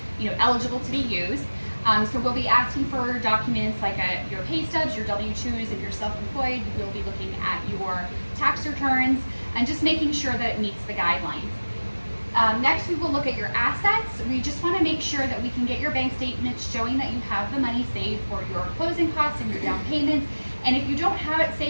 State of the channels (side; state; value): both; inverted; correlation -1.00